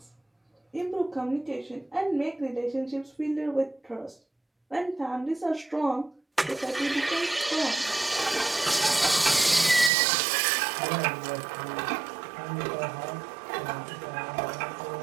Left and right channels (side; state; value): left; drops out; at 9.9 s